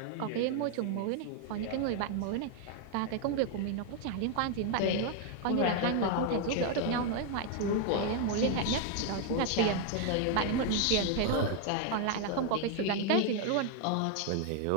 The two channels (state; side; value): different; both; correlation 0.00